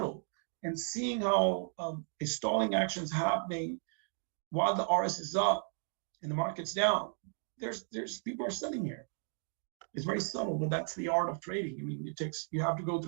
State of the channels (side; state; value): left; silent; 55 dB below the other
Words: And seeing how a stalling action is happening while the RS is up and the market's down, there's people are sitting here. It's very subtle, but that's the art of trading. I mean, you have to go